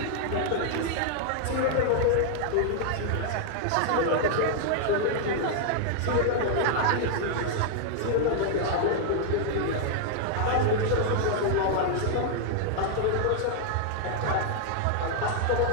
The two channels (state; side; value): different; both; correlation 0.00